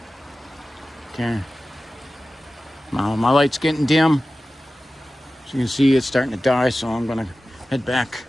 Okay. Now my light's getting dim. As you can see, it's starting to die, so I'm gonna head back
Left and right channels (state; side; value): normal; both; correlation 0.95